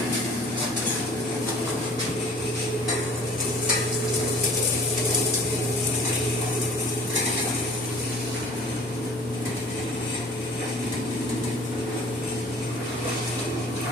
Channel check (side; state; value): both; normal; correlation 0.50